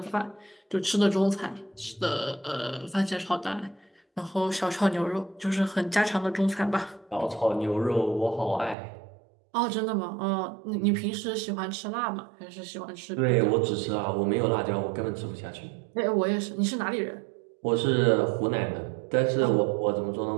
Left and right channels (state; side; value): drops out; left; at 8.8 s